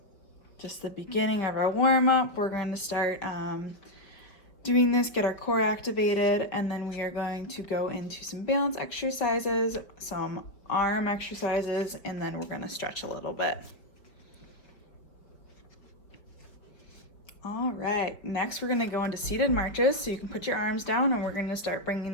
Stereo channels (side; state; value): right; late; 5.3 ms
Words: Just the beginning of our warm up. We're going to start doing this, get our core activated, and then we are going to go into some balance exercises, some arm exercises, and then we're gonna stretch a little bit. All right, next we're gonna go into seated marches. So you can put your arms down and we're gonna start